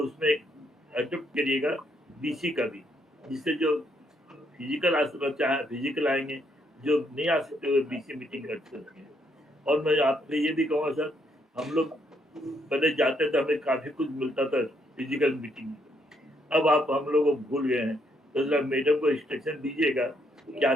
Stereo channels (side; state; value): both; normal; correlation 0.73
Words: उसमें अडोप्ट करिएगा बीसी का भी, जिससे जो फिजिकल आ सकता चाहे फिजिकल आएंगे, जो नहीं आ सकते हुए बीसी मीटिंग कर सकते हैं। और मैं आपसे ये भी कहूँगा सर, हम लोग पहले जाते थे हमें काफ़ी कुछ मिलता था फिजिकल मीटिंग में, अब आप हम लोग को भूल गए हैं। तो जरा मैडम को इंस्ट्रक्शन दीजिएगा कि